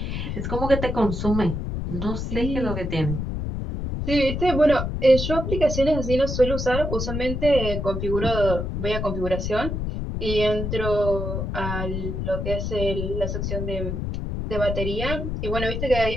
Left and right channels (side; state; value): left; noise; rumble, 3 dB below the sound